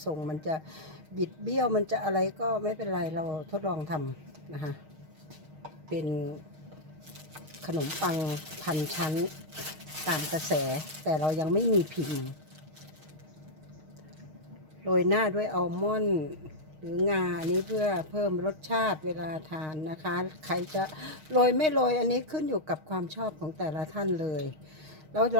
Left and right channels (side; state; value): left; late; 6.4 ms